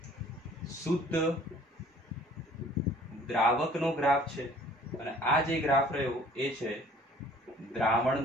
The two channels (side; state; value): both; normal; correlation 0.53